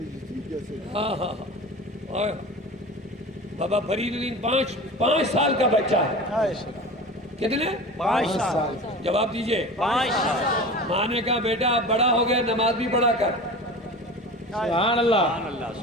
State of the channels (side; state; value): both; normal; correlation 0.34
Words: ہاں بابا فرید الدین 5 سال کا بچہ ہے. کتنے؟ 5 سال. جواب دیجئے. 5 سال. ماں نے کہا بیٹا اب بڑا ہو گیا, نماز بھی پڑھا کر. سبحان اللہ.